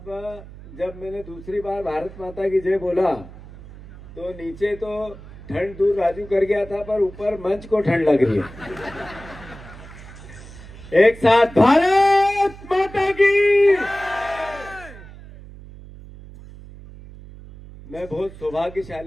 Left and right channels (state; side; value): noise; right; hum, 17 dB below the sound